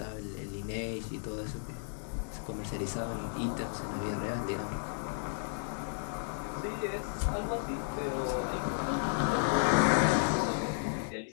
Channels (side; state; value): right; silent; 55 dB below the other